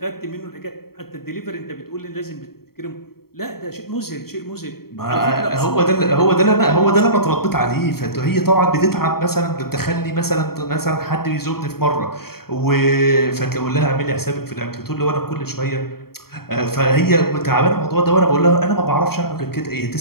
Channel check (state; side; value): late; right; 0.94 ms